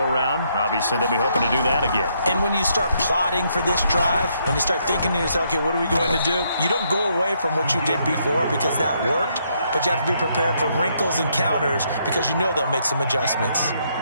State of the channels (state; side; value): inverted; both; correlation -0.73